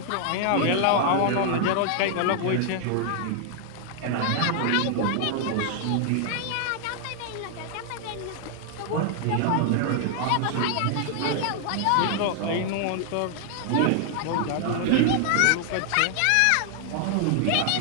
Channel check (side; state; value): both; different; correlation 0.00